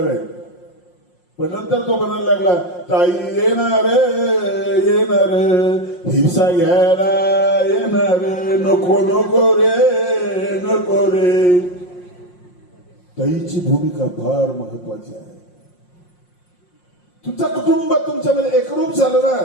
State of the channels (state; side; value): late; right; 5.6 ms